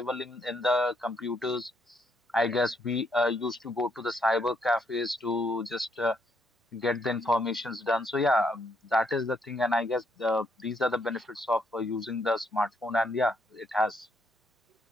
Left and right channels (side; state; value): both; normal; correlation 0.73